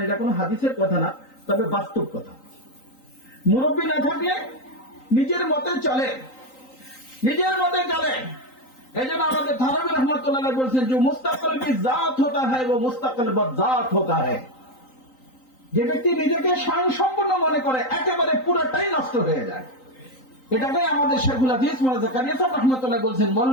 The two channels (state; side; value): late; right; 3.9 ms